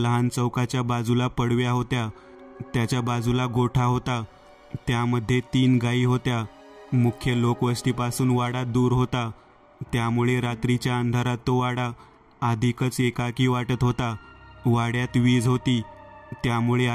चौकाच्या बाजूला पडव्या होत्या. त्याच्या बाजूला गोठा होता. त्यामध्ये 3 गायी होत्या. मुख्य लोकवस्तीपासून वाडा दूर होता, त्यामुळे रात्रीच्या अंधारात तो वाडा अधिकच एकाकी वाटत होता. वाड्यात वीज होती, त्यामुळे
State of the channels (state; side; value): identical; both; correlation 1.00